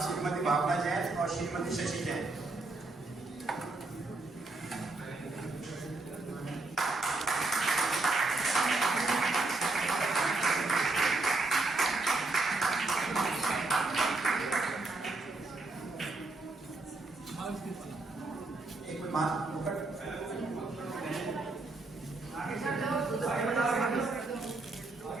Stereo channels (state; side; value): quieter; left; 3.4 dB